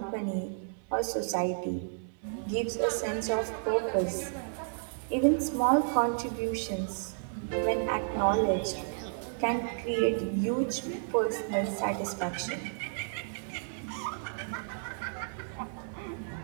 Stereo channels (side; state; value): left; silent; 56 dB below the other